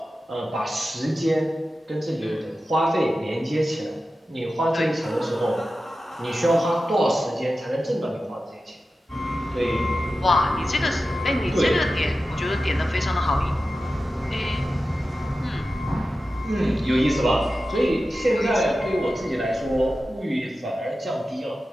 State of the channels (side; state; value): both; normal; correlation 0.93